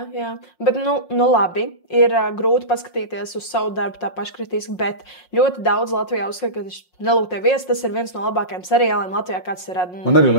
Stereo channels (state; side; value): late; right; 5.6 ms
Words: Bet, nu labi, ir grūti paskatīties uz savu darbu tā paškritiski, bet ļoti daudz Latvijā uzskata, ka Nelūgtie viesi, tas ir viens no labākajiem seriāliem Latvijā, kāds ir radīts. Man arī